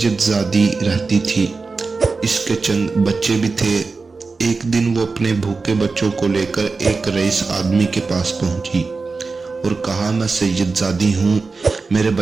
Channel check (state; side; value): quieter; left; 4.2 dB